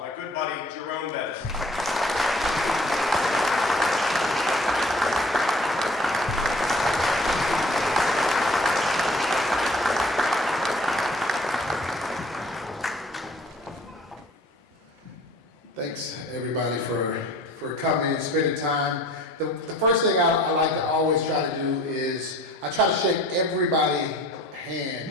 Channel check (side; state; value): both; normal; correlation 0.50